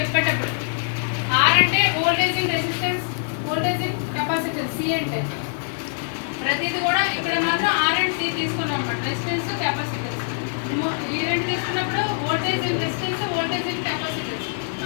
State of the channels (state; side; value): silent; right; digital silence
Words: చెప్పేటప్పుడు. R అంటే voltage in resistance, voltage in capacitance. C అంటే ప్రతిది కూడా ఇక్కడ మాత్రం R అండ్ C తీసుకున్నాం అన్నమాట. Resistance, capacitance. ఈ రెండు తీసుకున్నప్పుడు voltage in resistance, voltage in capacitance.